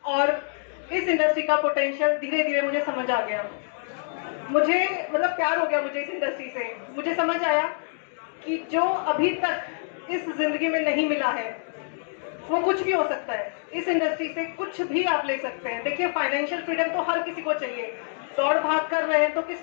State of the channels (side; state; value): right; silent; digital silence